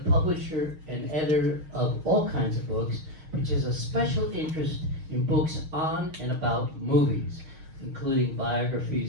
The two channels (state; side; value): late; left; 6.3 ms